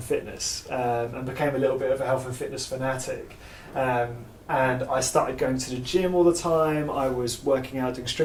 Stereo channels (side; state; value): both; identical; correlation 1.00